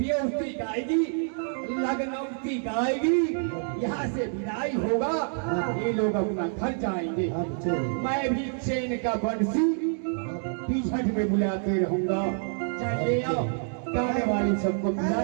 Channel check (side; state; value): left; silent; 60 dB below the other